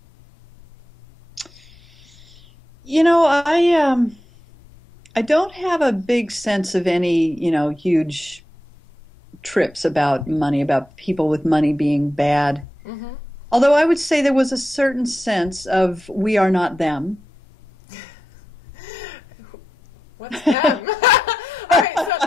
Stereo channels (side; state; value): both; normal; correlation 0.89